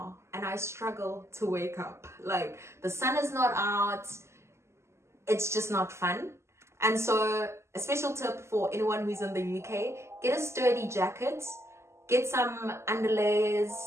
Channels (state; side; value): late; left; 0.13 ms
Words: and I struggle to wake up. The sun is not out. It's just not fun. And so a special tip for anyone who's in the UK, get a sturdy jacket, get some underlayers,